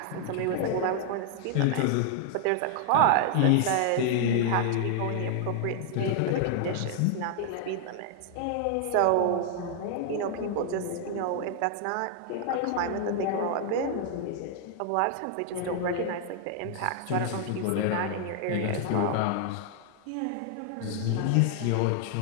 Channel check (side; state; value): both; different; correlation 0.00